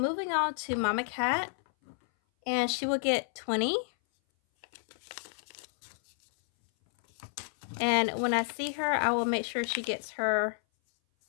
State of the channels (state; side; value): silent; right; 57 dB below the other